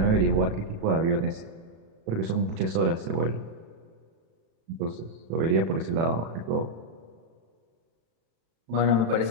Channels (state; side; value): late; left; 36 ms